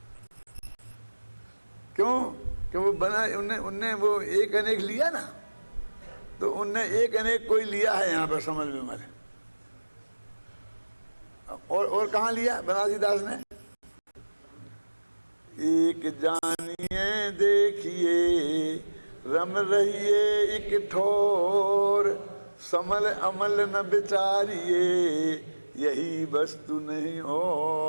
क्यों? क्यों वो बना, उनने वो एक अनेक लिया ना, तो उनने एक अनेक कोई लिया है यहाँ पर समल विमल। और कहाँ लिया बनारसीदास ने? एक जानिए देखिए रम रहिए एक ठोर, समल अमल न विचारिए यही वस्तु नहीं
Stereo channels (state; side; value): inverted; both; correlation -1.00